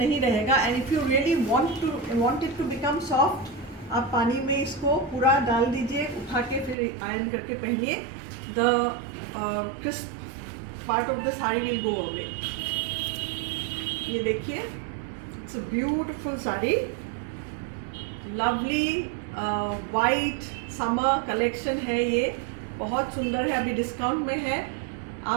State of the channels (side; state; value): left; drops out; at 6.8 s